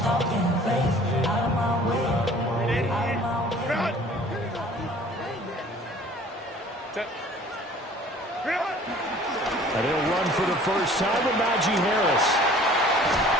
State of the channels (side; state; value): both; normal; correlation 0.50